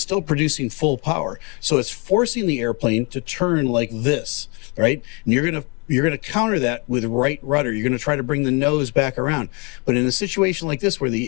producing full power. So it's forcing the airplane to turn like this, right? And you're going to counter that with right rudder. You're going to try to bring the nose back around. But in a situation like this where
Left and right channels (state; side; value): quieter; right; 32.5 dB